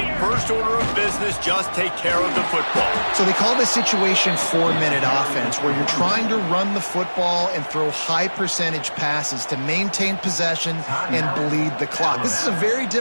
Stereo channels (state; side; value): inverted; both; correlation -1.00